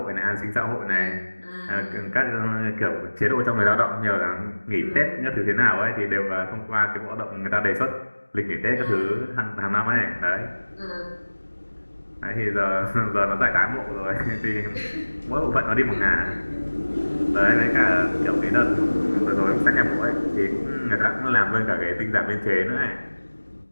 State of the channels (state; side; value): inverted; both; correlation -1.00